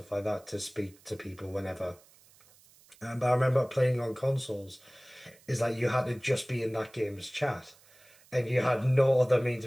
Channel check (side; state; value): right; noise; hiss, 27 dB below the sound